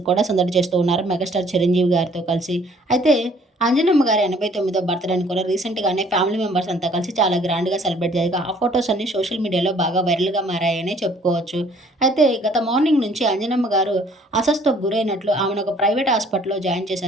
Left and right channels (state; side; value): normal; both; correlation 0.58